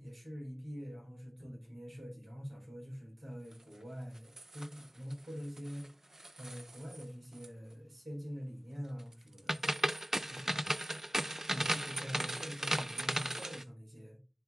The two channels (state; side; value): normal; both; correlation 0.96